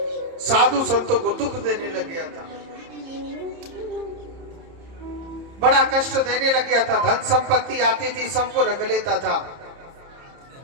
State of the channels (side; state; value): left; late; 30 ms